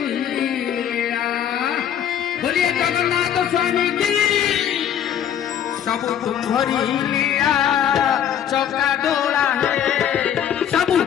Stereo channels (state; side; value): quieter; right; 9.5 dB